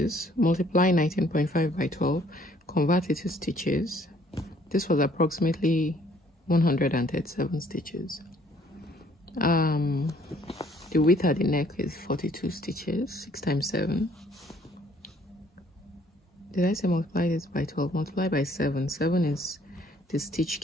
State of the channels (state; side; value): normal; both; correlation 0.61